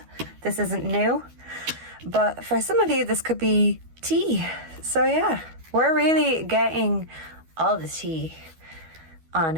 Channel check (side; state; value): left; late; 12 ms